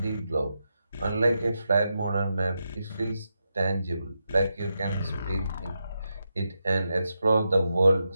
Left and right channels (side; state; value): both; inverted; correlation -0.87